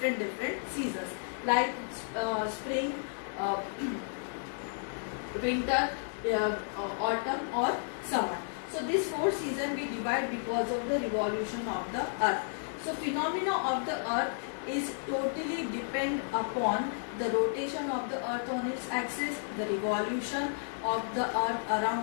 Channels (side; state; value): right; silent; digital silence